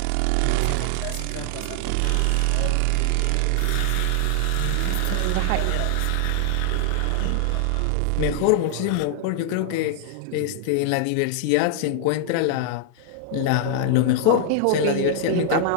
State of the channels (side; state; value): both; different; correlation -0.01